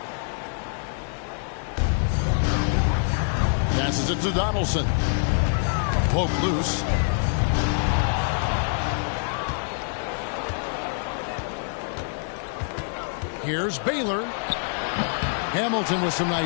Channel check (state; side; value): silent; right; 61 dB below the other